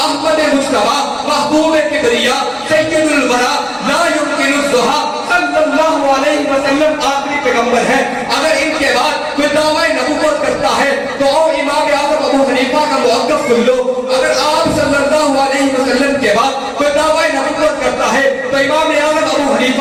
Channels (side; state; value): both; identical; correlation 1.00